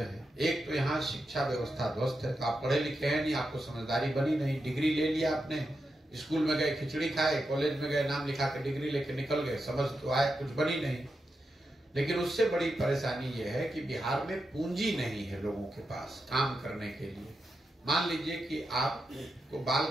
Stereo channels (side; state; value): both; normal; correlation 0.87